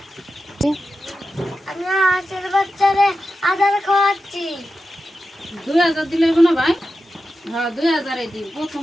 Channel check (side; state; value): both; normal; correlation 0.91